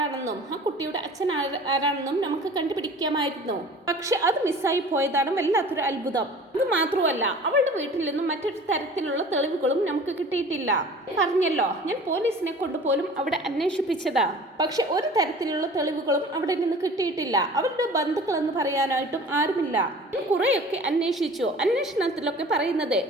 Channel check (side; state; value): both; normal; correlation 0.44